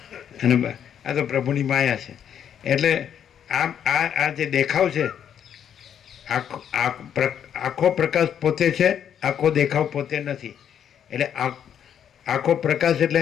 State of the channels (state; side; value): quieter; right; 8.9 dB